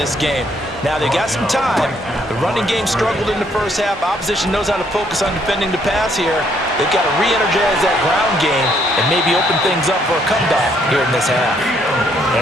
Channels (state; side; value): normal; both; correlation 0.69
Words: game. Now, they got some time. The running game struggled in the first half. Opposition knows how to focus on defending the pass here. They've got to re-energize that ground game and maybe open things up for a comeback here in this half.